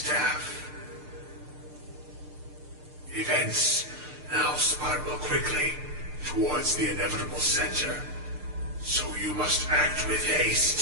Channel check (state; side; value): late; left; 6.7 ms